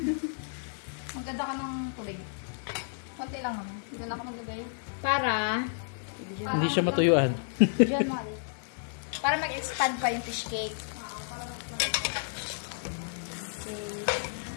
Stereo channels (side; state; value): right; silent; digital silence